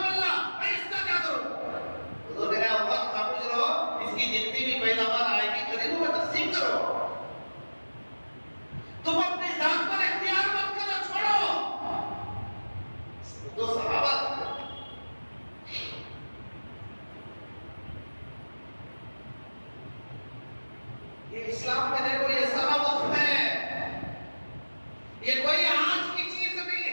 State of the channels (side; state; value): both; inverted; correlation -1.00